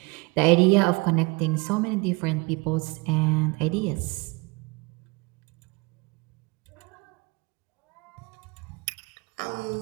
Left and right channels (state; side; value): quieter; left; 27.1 dB